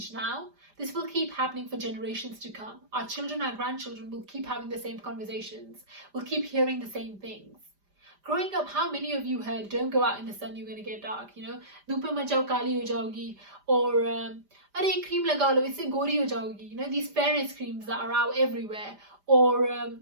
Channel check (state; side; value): late; left; 5.0 ms